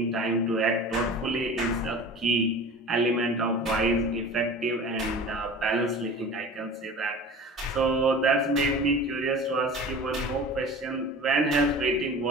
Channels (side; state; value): both; normal; correlation 0.38